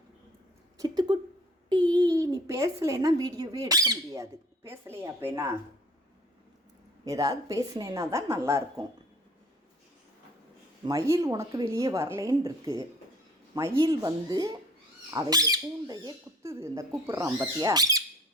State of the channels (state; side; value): normal; both; correlation 0.51